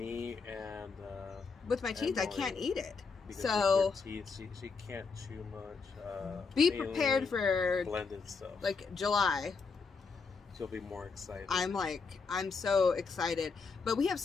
and with my teeth, I Emily, can't eat it. because So with her teeth, she can't chew much. be mainly prepared for blended stuff. like July. She'll be more excited. I'm so excited. But we have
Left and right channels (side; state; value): right; quieter; 4.8 dB